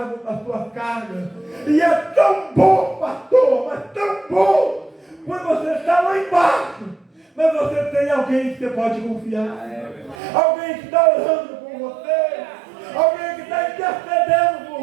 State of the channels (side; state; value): left; drops out; at 10.2 s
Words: as suas cargas. E é tão bom, pastor, mas tão bom, quando você está lá embaixo, mas você tem alguém que você pode confiar, alguém que está orando por você, alguém que está intercedendo por